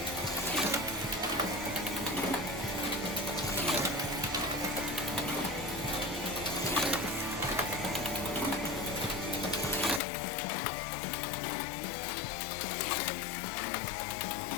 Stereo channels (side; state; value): right; drops out; at 10.0 s